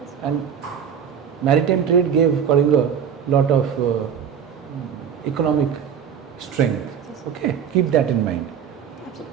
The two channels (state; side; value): quieter; left; 8.0 dB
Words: And maritime trade gave Kalinga lot of economic strength. Okay, keep that in mind.